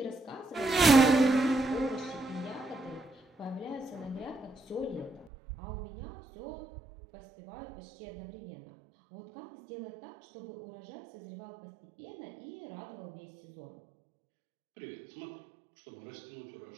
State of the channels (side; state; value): left; drops out; at 5.3 s